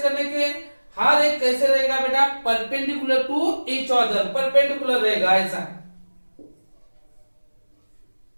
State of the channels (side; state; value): both; inverted; correlation -1.00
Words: करने के, हर एक कैसे रहेगा बेटा, perpendicular to each other, perpendicular रहेगा ऐसा।